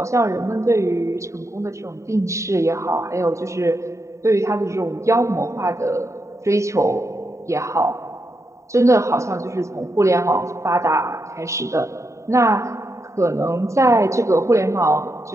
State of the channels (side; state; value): left; late; 0.14 ms